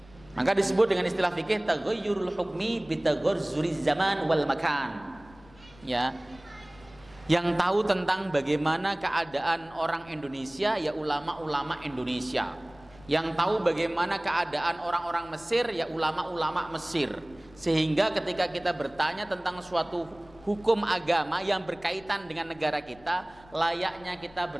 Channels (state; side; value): noise; left; rumble, 24 dB below the sound